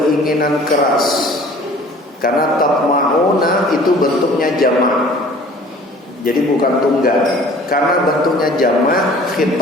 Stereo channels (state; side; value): normal; both; correlation 0.49